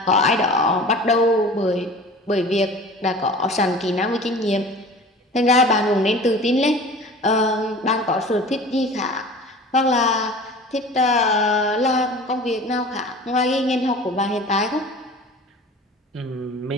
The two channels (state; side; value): normal; both; correlation 0.41